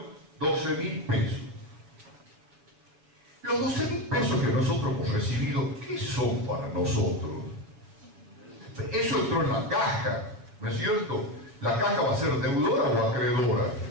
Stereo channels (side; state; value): left; late; 7.0 ms